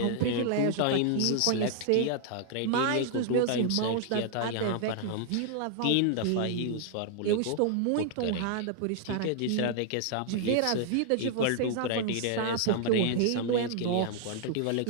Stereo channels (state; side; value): different; both; correlation 0.00